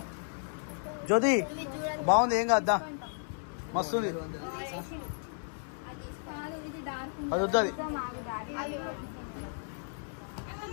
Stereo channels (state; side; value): silent; right; digital silence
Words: జ్యోతి బాగుంది, ఏం కాద్దా, మస్తుంది. అది వద్దు, అది